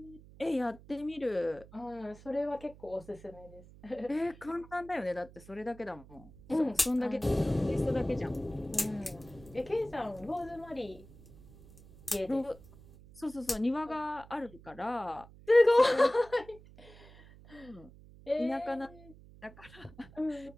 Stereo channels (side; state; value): right; noise; hum, 21 dB below the sound